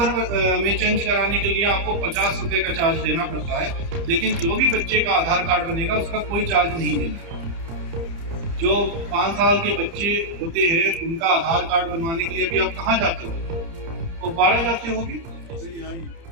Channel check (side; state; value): left; late; 30 ms